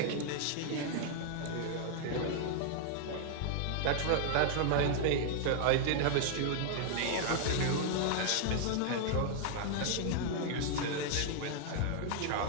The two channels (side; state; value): both; different; correlation 0.00